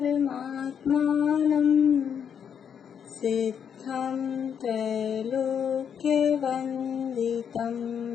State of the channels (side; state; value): right; quieter; 7.9 dB